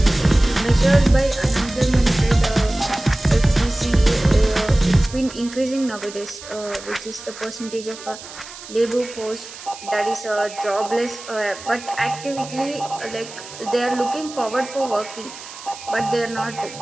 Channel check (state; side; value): noise; right; hiss, 15 dB below the sound